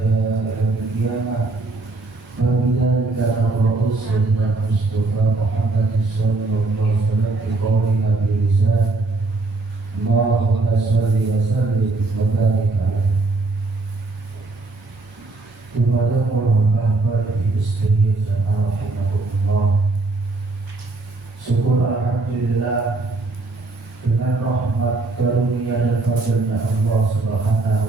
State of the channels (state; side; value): quieter; left; 3.4 dB